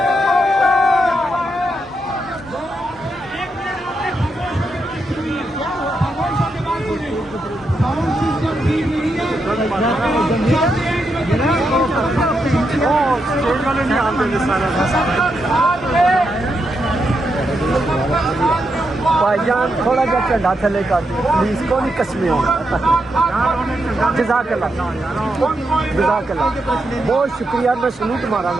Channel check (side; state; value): both; normal; correlation 0.83